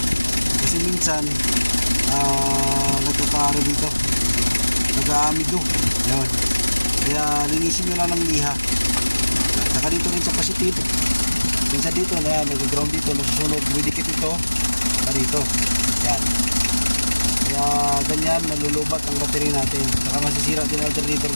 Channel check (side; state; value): both; inverted; correlation -1.00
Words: Kasi minsan nagkakaaro dito, nag-aamido. Yan. Kaya linisin nyo lang ng liha. Saka dito rin sa positive. Minsan dito na nag-ground dito, nasusunog, dumidikit ito dito. Yan. Kaya ganyan, nalulubat ang battery natin. Saka masisira din ang alternator